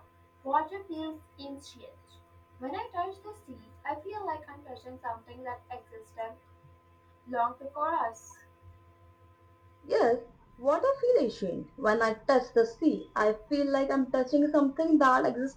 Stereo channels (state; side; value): identical; both; correlation 1.00